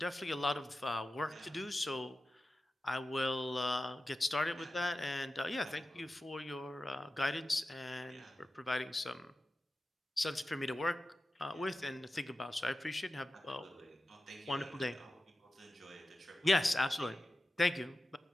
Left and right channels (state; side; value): normal; both; correlation 0.93